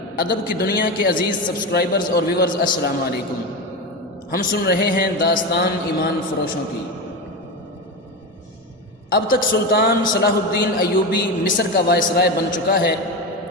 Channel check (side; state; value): both; normal; correlation 0.19